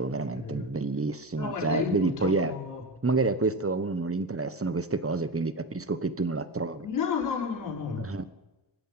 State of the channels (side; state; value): both; normal; correlation 0.21